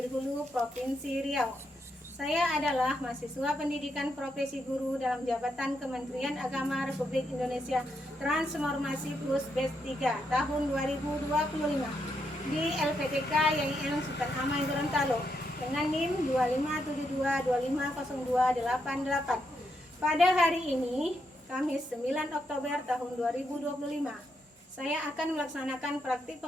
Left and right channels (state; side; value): normal; both; correlation 0.80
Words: Hulu, Provinsi Riau. Saya adalah mahasiswa pendidikan profesi guru dalam jabatan Kementerian Agama Republik Indonesia Transformasi Plus Batch 3 tahun 2025 di LPTK YN Sultan Amai Gorontalo dengan NIM 2572250288. Pada hari ini, Kamis 9 Oktober tahun 2025, saya akan melaksanakan praktik